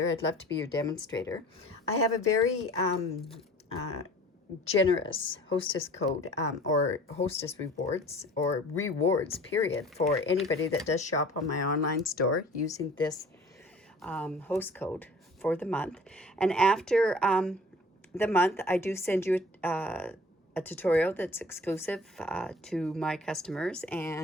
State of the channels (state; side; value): normal; both; correlation 0.47